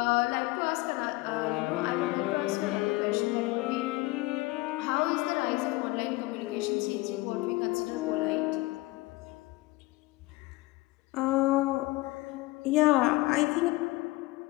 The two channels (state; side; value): quieter; right; 21.2 dB